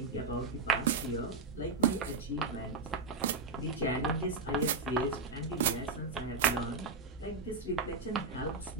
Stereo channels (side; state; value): left; quieter; 3.9 dB